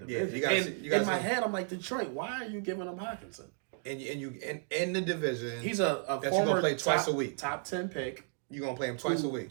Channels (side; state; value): left; silent; 56 dB below the other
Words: Yeah, in my head, I'm like, Detroit, why are you giving him Hockenson? And in the division, he's a that you're gonna play twice a week. Top 10 pick. You're gonna play him twice a